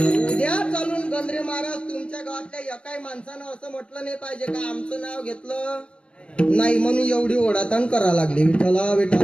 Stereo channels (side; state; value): right; late; 0.057 ms